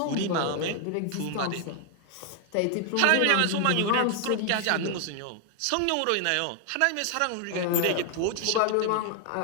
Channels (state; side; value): different; both; correlation 0.00